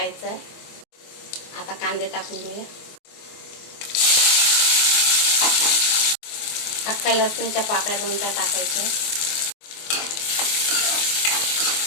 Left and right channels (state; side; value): late; right; 24 ms